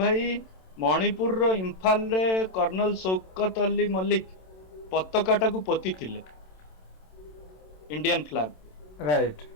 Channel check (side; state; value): right; late; 27 ms